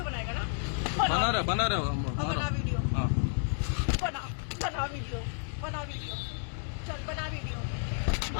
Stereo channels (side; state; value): right; silent; digital silence